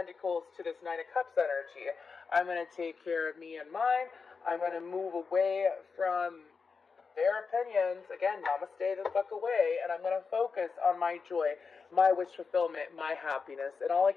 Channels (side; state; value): right; quieter; 5.1 dB